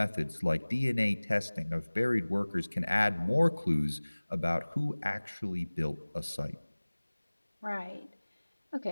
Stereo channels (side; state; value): both; inverted; correlation -1.00